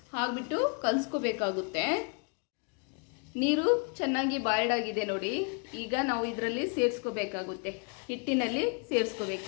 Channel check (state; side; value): quieter; right; 37.0 dB